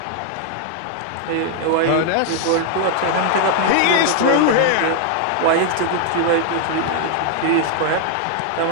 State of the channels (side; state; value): both; different; correlation 0.00